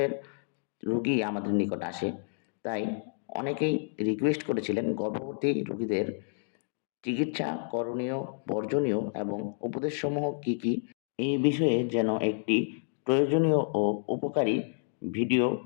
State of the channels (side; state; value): right; silent; digital silence